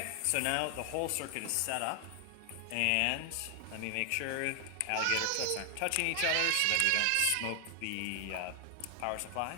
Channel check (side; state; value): both; different; correlation 0.00